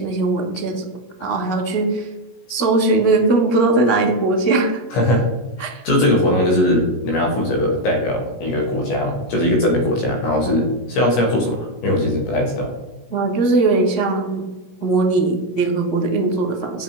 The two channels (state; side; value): late; right; 16 ms